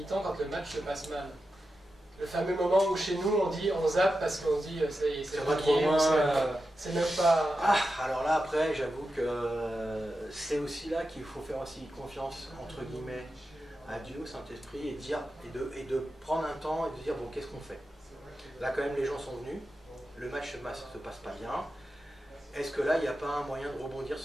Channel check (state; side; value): normal; both; correlation 0.90